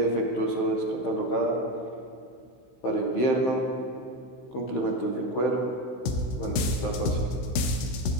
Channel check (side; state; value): right; late; 16 ms